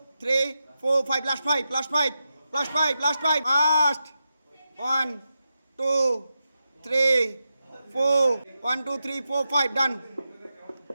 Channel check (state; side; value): inverted; both; correlation -0.89